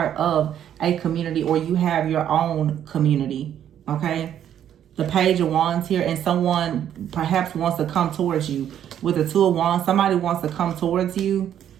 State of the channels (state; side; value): quieter; left; 10.1 dB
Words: of a community, or you have your own community. Okay, the Page of Wands here, and someone perhaps wants to come towards you. With the Two of Wands, somebody wants to come towards you.